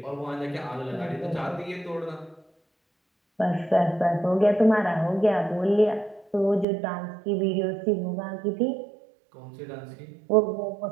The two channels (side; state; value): left; drops out; at 6.7 s